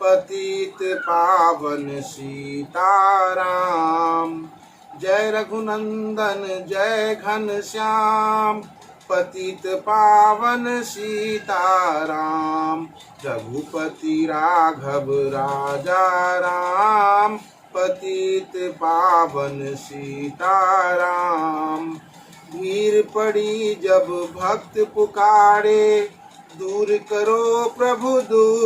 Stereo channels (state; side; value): identical; both; correlation 1.00